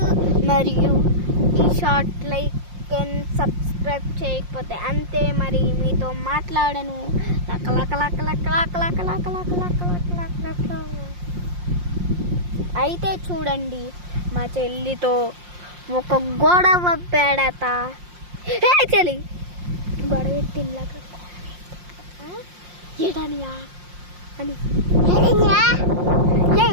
మరియు ఈ షాట్ లైక్ అండ్ సబ్స్క్రైబ్ చేయకపోతే అంతే. మరి మీతో మాట్లాడను. లక్క లక్క లక్క లక్క లక్క లక్క లక్క లక్క లక్క లక్క లక్క లక్క. అయితే చూడండి, మా చెల్లితో ఒక గొడవ పెడత. చెల్లి గొడవ పెట్టిందాక ఏటనియా అని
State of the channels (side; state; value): left; late; 5.6 ms